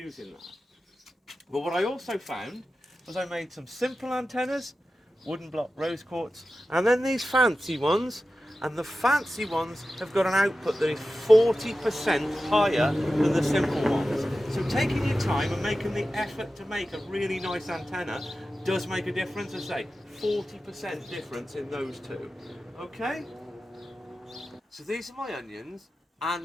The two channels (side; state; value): both; normal; correlation 0.93